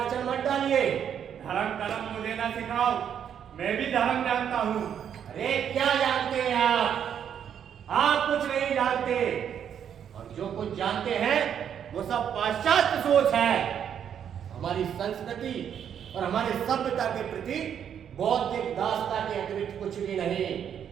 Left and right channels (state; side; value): quieter; left; 8.7 dB